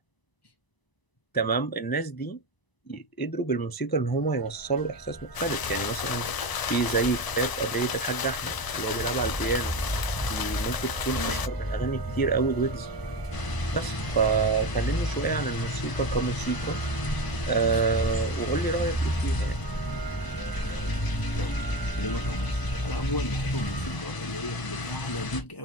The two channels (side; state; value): right; late; 1.0 ms